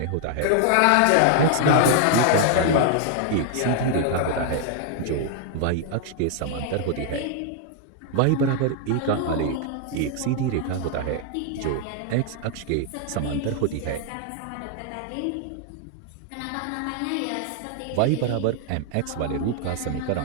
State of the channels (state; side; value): different; both; correlation 0.00